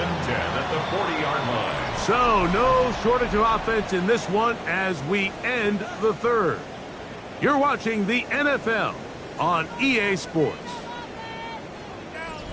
10 at the 40-yard line. So, no shortage of offense in this one as we end the third. You're watching the NFL on EA Sports.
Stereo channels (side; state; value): both; identical; correlation 1.00